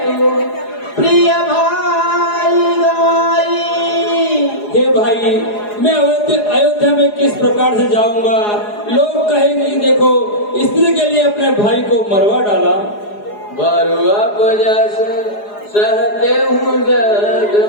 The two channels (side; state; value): right; late; 4.8 ms